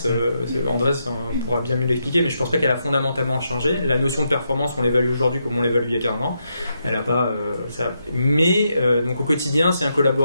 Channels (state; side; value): inverted; both; correlation -0.82